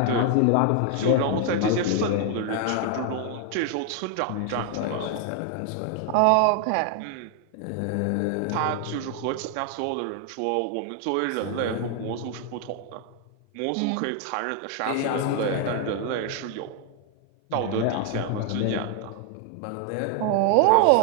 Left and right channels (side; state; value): both; different; correlation 0.00